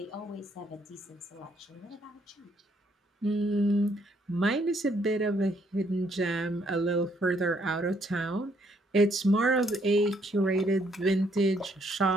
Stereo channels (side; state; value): both; normal; correlation 0.70